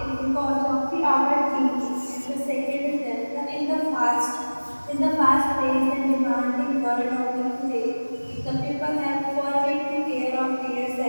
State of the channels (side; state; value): both; inverted; correlation -1.00